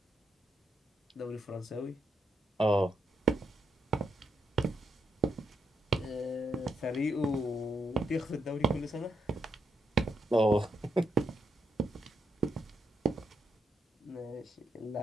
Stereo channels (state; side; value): normal; both; correlation 0.82